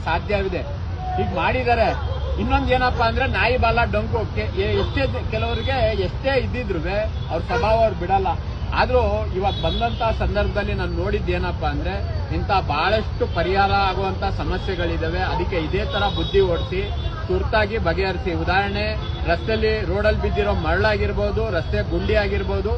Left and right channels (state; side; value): identical; both; correlation 1.00